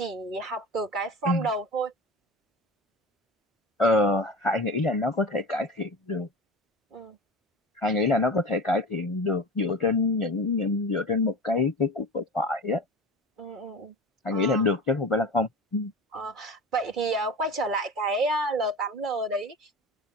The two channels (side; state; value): both; normal; correlation 0.31